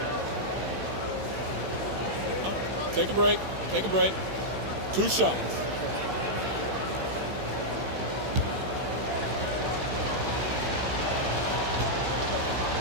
Take a break. Take a break. 2 shots.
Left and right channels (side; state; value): left; late; 15 ms